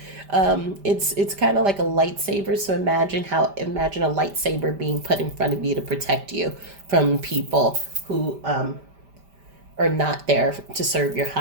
it's kind of like a lightsaber. So imagine a lightsaber being put in front of you to protect you from people who are not there to serve your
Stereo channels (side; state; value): left; late; 5.1 ms